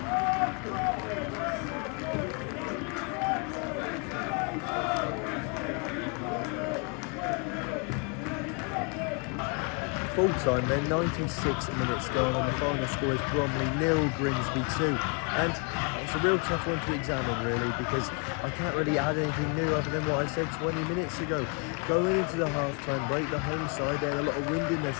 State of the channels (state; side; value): quieter; right; 35.7 dB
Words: Full time then, 96 minutes going on. The final score is Bromley 0, Grimsby 2, and it's a real tough one to examine really, because I can't really add anything new other than what I said 20 minutes ago. Going into the half-time break, the home side, they had a lot of wind in their